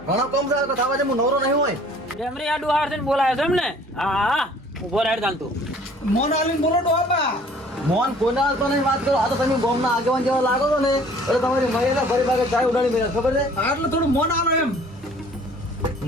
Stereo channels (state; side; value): normal; both; correlation 0.53